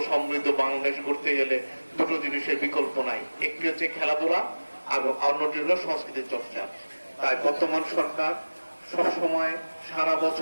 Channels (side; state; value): both; inverted; correlation -1.00